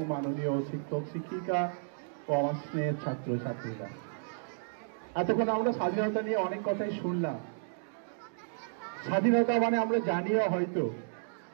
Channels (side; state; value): left; silent; digital silence